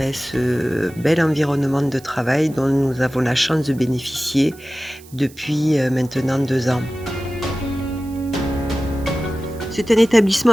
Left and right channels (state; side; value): noise; right; hiss, 23 dB below the sound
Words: ce bel environnement de travail dont nous avons la chance de bénéficier depuis maintenant 2 ans. C'est un établissement